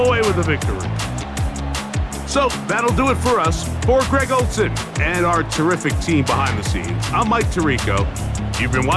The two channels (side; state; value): both; identical; correlation 1.00